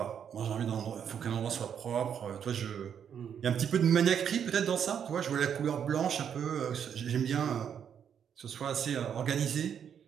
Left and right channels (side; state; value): left; quieter; 8.2 dB